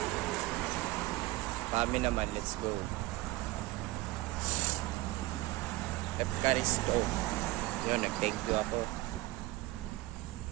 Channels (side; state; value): left; quieter; 19.3 dB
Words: Pami naman, let's go. Efkaristo. Yun, nag-thank you ako.